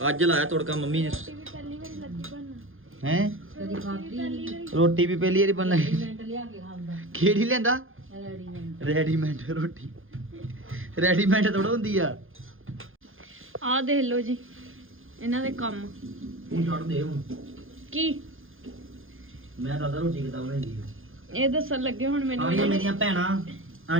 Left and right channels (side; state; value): left; late; 0.59 ms